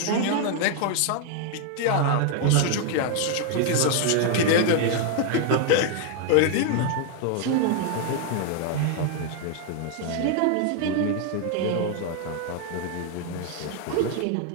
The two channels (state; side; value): different; both; correlation 0.00